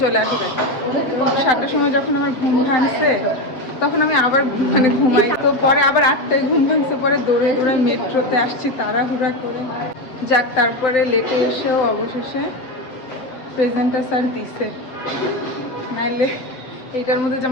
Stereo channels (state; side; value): late; right; 7.9 ms